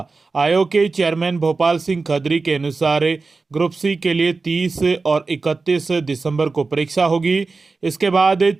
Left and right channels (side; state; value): left; quieter; 4.0 dB